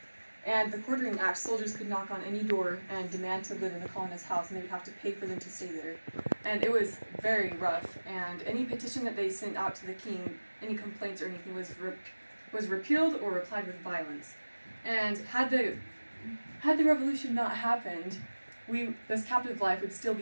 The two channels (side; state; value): both; inverted; correlation -1.00